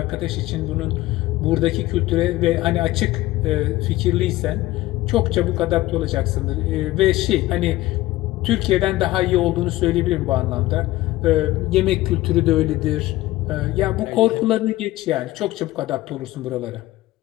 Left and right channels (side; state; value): right; quieter; 17.1 dB